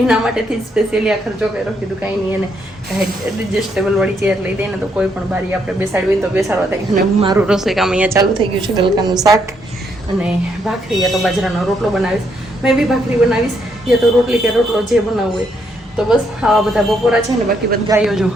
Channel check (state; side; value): normal; both; correlation 0.74